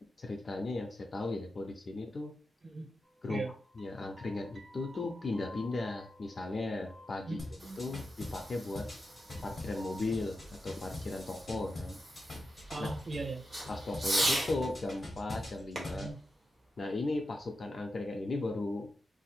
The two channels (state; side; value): normal; both; correlation 0.89